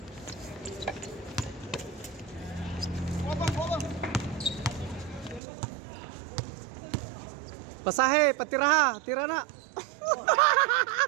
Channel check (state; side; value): drops out; left; at 5.4 s